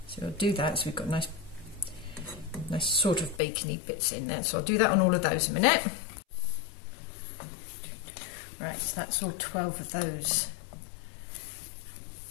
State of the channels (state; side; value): drops out; right; at 3.4 s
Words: So I'll do that, so we've got nice sort of bacony bits in there. So I'll do that on all of those in a minute. Right, so that's all 12 of those